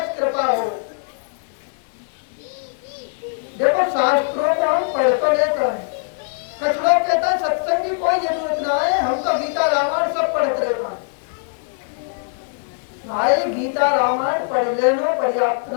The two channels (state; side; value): silent; right; digital silence